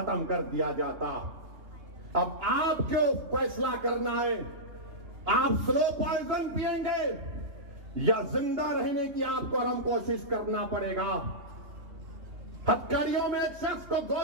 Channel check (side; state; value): left; late; 2.9 ms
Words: कर दिया जाता। अब आपको फैसला करना है, आप स्लो पॉइजन पिएंगे या जिंदा रहने की आपको और हम कोशिश करना पड़ेगा। हथकड़ियों में एक शख्स को